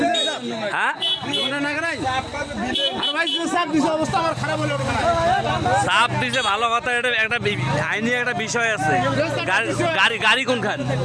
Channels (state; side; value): identical; both; correlation 1.00